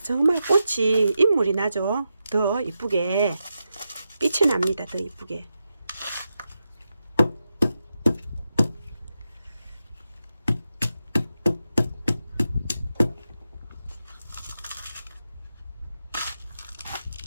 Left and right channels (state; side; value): inverted; both; correlation -0.88